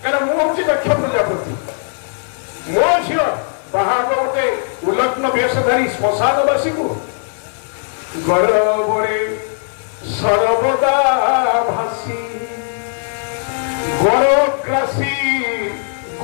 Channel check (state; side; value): silent; right; digital silence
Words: क्या मुझे दक्ष प्रजापति मो झी बाहर गोटे उल्लग्न वेशधारी श्मशानवासी को गौरवरे सर्वदा भासी गौरवग्रासी